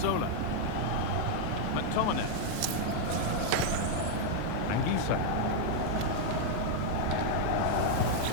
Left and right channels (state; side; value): different; both; correlation 0.00